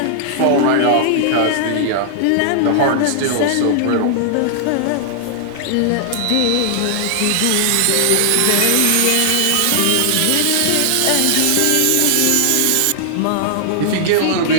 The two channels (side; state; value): both; different; correlation -0.01